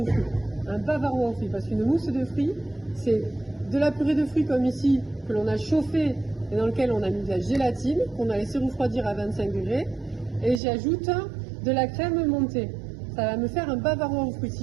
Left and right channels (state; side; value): drops out; left; at 10.6 s